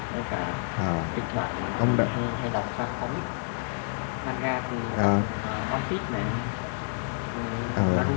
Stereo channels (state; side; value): silent; right; digital silence